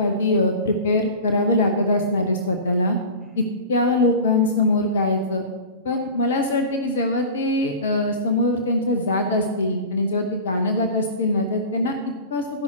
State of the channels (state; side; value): inverted; both; correlation -0.34